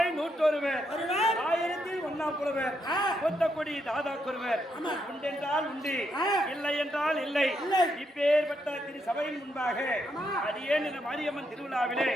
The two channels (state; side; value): normal; both; correlation 0.79